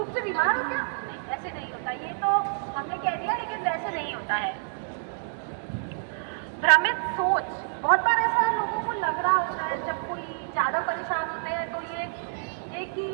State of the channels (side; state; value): left; silent; digital silence